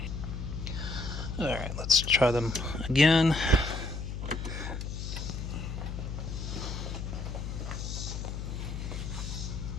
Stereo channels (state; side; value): noise; left; hum, 5 dB below the sound